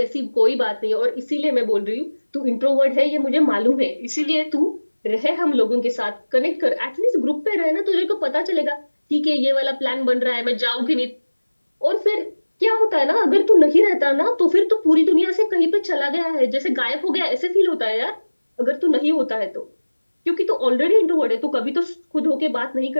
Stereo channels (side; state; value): both; inverted; correlation -1.00